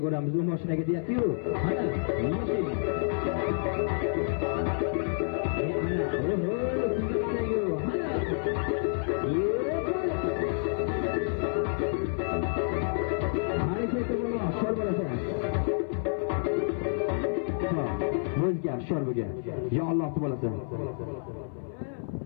ko'ramiz. U mashinaga deyapti-ku. Ana, O'zgar shorbiga. Ya Alloh bo'lasan.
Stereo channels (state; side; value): silent; right; 58 dB below the other